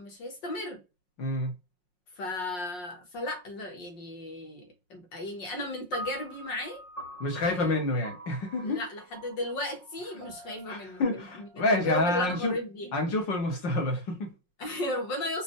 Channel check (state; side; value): late; right; 5.5 ms